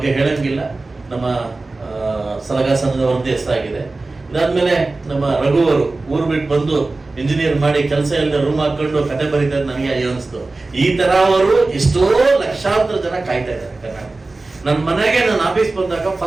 ಹೇಳಂಗಿಲ್ಲ, ನಮ್ಮ ಸಲಗಾ ಸಂಜನವರಂತೆ ಹೆಸರಾಗಿದೆ. ಇದಾದ್ಮೇಲೆ ನಮ್ಮ ರಘುವರು ಊರು ಬಿಟ್ಟು ಬಂದು ಇಂಜಿನಿಯರ್ ಮಾಡಿ ಕೆಲಸ ಇಲ್ಲದೆ ರೂಮ್ ಹಾಕೊಂಡು ಕತೆ ಬರೀತಾರೆ. ನನಗೆ ಅಯ್ಯೋ ಅನಿಸ್ತು. ಈ ತರ ಅವರು ಎಷ್ಟೋ ಲಕ್ಷಾಂತರ ಜನ ಕಾಯ್ತಾ ಇದ್ದಾರೆ ಕರ್ನಾಟಕ. ನನ್ನ ಮನೆಗೆ ನಾನು ಆಫೀಸ್ ಬಂದಾಗ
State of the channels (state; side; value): quieter; left; 3.3 dB